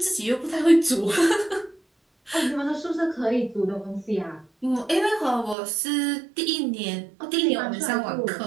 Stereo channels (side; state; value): left; drops out; at 5.6 s